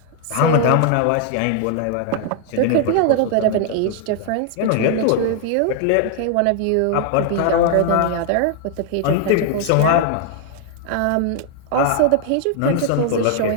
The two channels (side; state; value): both; different; correlation 0.00